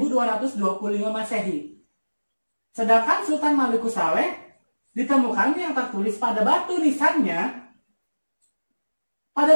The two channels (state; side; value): inverted; both; correlation -1.00